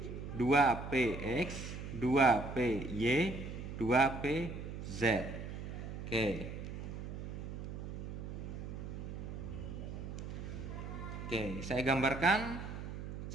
2PX, 2PY, 2PZ. Oke. Oke, saya gambarkan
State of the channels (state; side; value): noise; right; hum, 7 dB below the sound